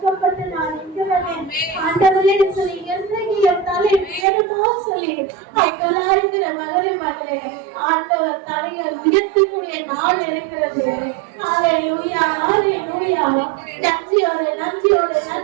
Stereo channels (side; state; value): left; drops out; at 4.2 s